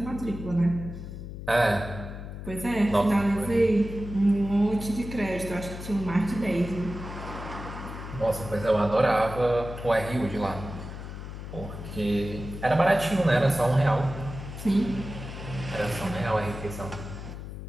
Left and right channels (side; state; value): left; noise; hum, 10 dB below the sound